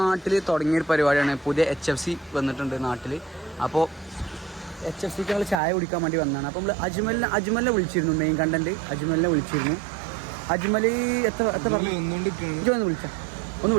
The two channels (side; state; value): left; drops out; at 5.6 s